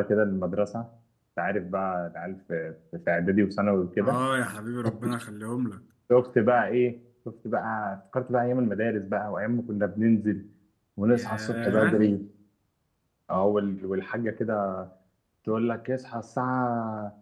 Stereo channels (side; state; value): both; identical; correlation 1.00